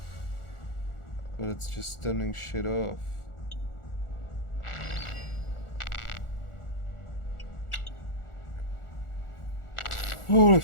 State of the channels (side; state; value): right; late; 1.4 ms